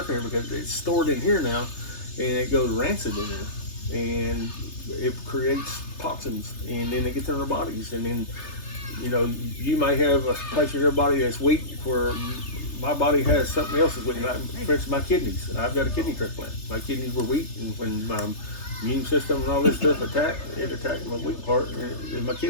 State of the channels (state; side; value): late; right; 3.3 ms